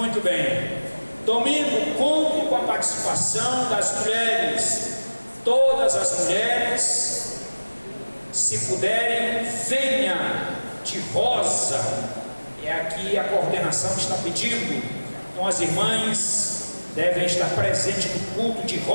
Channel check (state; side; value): inverted; both; correlation -1.00